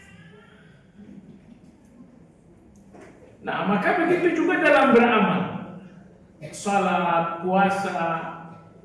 Nah, maka begitu juga dalam beramal. Salat, puasa,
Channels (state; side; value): identical; both; correlation 1.00